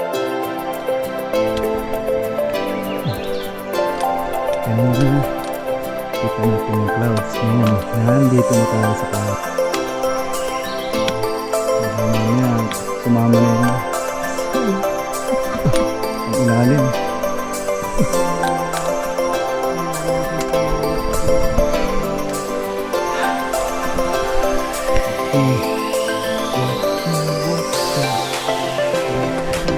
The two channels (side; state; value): both; identical; correlation 1.00